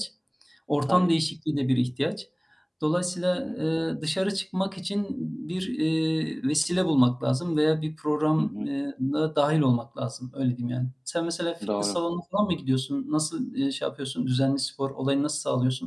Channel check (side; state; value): both; identical; correlation 1.00